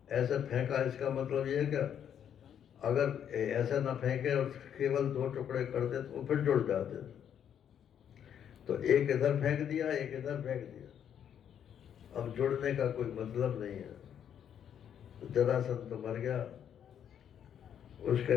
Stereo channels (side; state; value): right; quieter; 9.0 dB